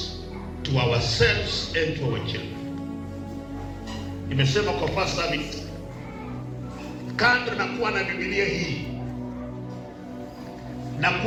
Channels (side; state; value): both; identical; correlation 1.00